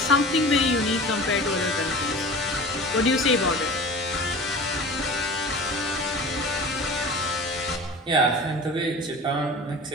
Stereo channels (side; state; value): both; normal; correlation 0.37